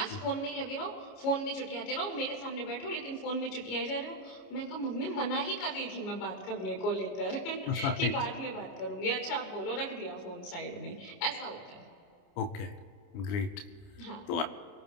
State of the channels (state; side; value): late; right; 29 ms